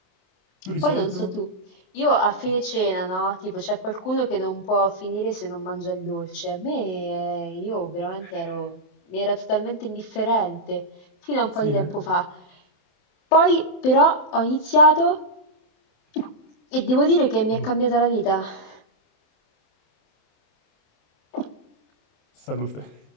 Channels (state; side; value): late; right; 27 ms